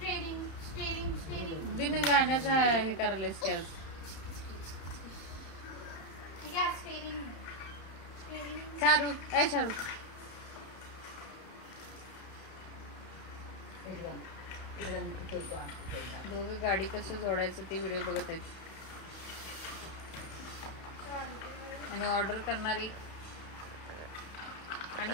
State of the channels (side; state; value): right; late; 31 ms